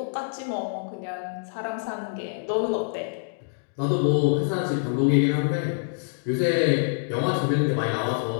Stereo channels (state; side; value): silent; right; digital silence